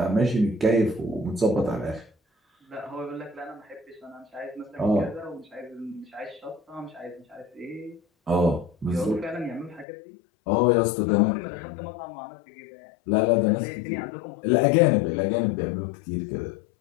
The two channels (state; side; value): drops out; right; at 9.9 s